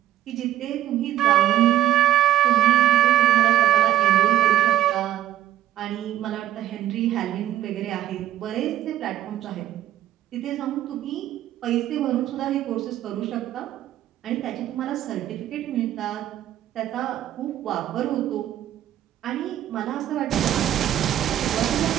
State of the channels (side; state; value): left; quieter; 12.3 dB